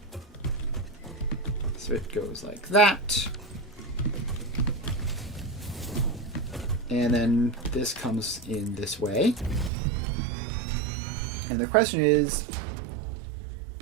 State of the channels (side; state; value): left; drops out; at 9.7 s